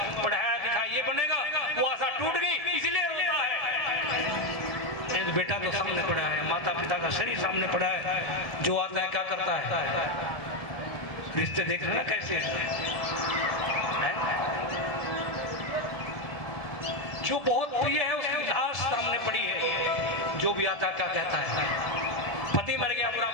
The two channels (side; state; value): right; late; 1.7 ms